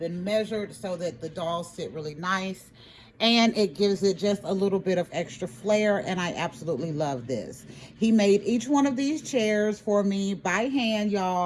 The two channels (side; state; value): both; identical; correlation 1.00